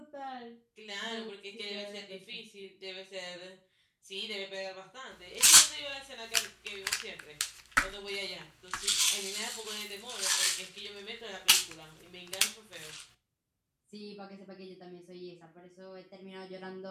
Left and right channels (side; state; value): both; identical; correlation 1.00